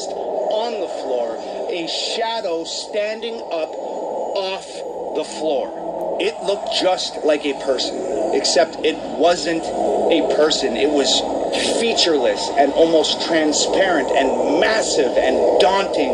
on the floor. A shadow standing up off the floor. It looked just like a person, except it wasn't a person. It was featureless and almost transparent and massive and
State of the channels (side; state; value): both; identical; correlation 1.00